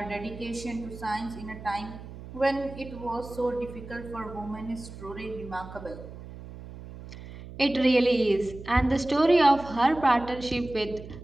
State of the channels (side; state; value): right; noise; hum, 14 dB below the sound